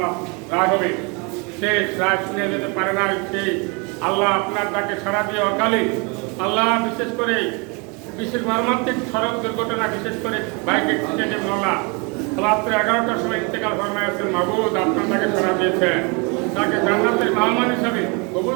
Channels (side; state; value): left; quieter; 31.3 dB